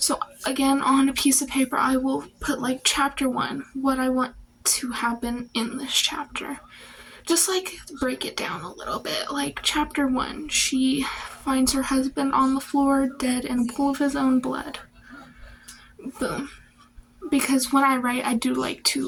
again, on a piece of paper, I will put like chapter 1, what I want to happen in this chapter. Just like break it down a little bit. Like chapter 1, she finds her husband on the floor dead in a pool of his own blood. Boom. Because when I write, I do like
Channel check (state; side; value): identical; both; correlation 1.00